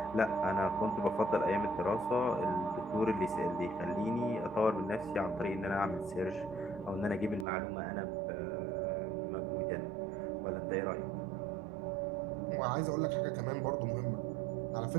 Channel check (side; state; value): left; drops out; at 7.5 s